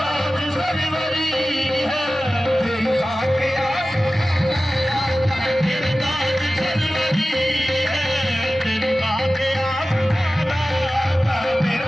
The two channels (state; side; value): normal; both; correlation 0.96